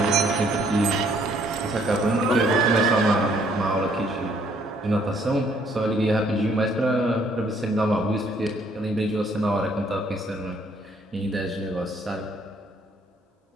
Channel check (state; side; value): normal; both; correlation 0.65